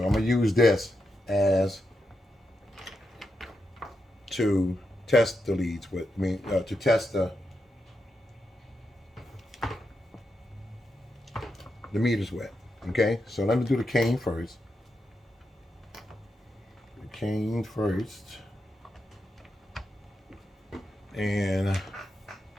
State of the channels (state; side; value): normal; both; correlation 0.85